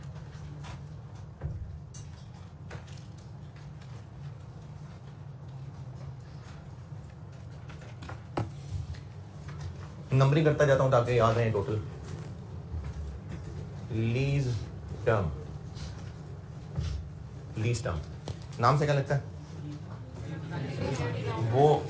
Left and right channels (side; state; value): both; identical; correlation 1.00